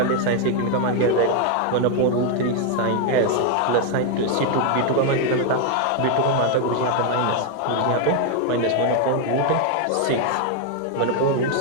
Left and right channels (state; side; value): different; both; correlation 0.01